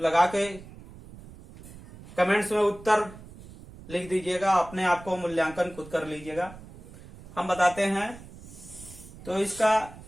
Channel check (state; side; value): noise; right; rumble, 18 dB below the sound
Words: के कमेंट्स में उत्तर लिख दीजिएगा, अपने आप को मूल्यांकन खुद कर लीजिएगा। हम बताते हैं। तो इसका